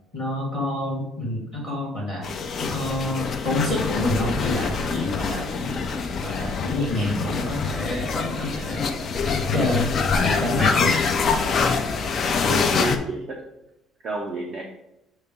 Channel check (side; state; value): right; quieter; 3.3 dB